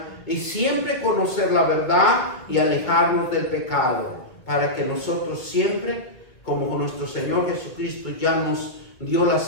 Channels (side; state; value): right; late; 2.0 ms